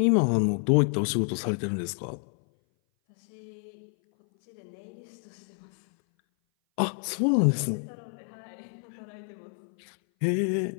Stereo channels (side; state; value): right; silent; 58 dB below the other